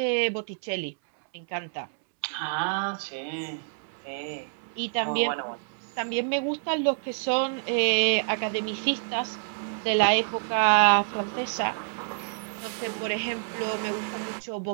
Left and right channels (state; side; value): silent; left; digital silence